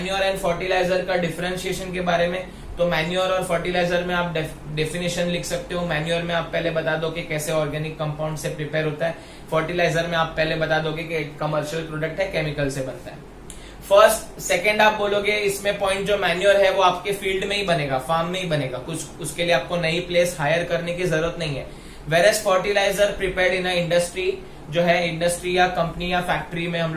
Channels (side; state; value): both; identical; correlation 1.00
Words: एंड फर्टिलाइजर का डिफरेंशिएशन के बारे में। तो मैन्योर और फर्टिलाइजर में आप डेफिनेशन लिख सकते हो। मैन्योर में आप पहले बता दो कि कैसे ऑर्गेनिक कंपाउंड से प्रिपेयर होता है, फर्टिलाइजर में आप पहले बता दोगे कि कमर्शियल प्रोडक्ट है, केमिकल से बनता है। फर्स्ट सेकंड आप बोलोगे इसमें पॉइंट, जो मैन्योर है वो आपके फील्ड में ही बनेगा, फार्म में ही बनेगा, कुछ उसके लिए आपको नई प्लेस हायर करने की जरूरत नहीं है। Whereas fertilizer prepared in a industry, जो है इंडस्ट्री या कंपनी या फैक्ट्री में हम